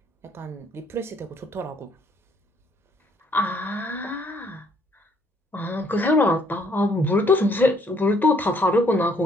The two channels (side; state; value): both; normal; correlation 0.65